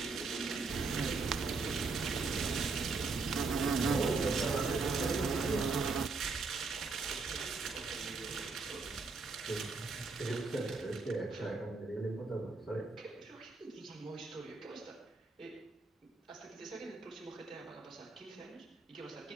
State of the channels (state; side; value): quieter; left; 4.1 dB